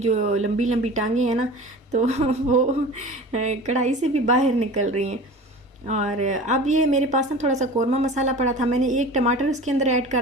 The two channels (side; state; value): both; normal; correlation 0.37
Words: लंबी लंबी टांगें हैं ना, तो वो कढ़ाई से भी बाहर निकल रही हैं। और अब ये मेरे पास ना थोड़ा सा कौरमा मसाला पड़ा था, मैंने एक टमाटर इसके अंदर ऐड